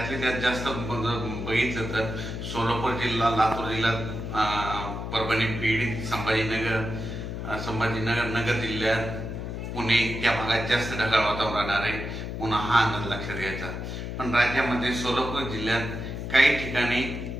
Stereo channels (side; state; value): left; noise; hum, 6 dB below the sound